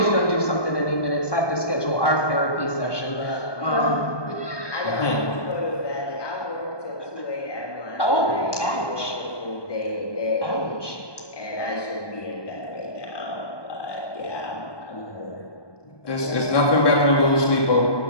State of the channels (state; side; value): late; right; 1.2 ms